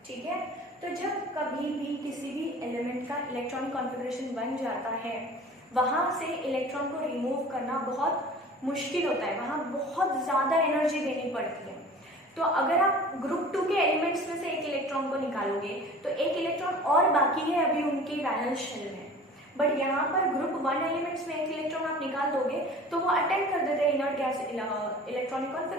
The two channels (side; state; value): both; normal; correlation 0.43